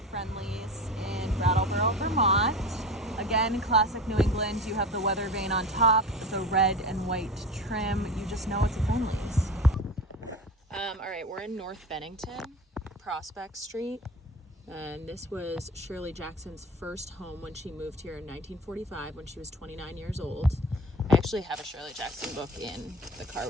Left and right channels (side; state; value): both; normal; correlation 0.32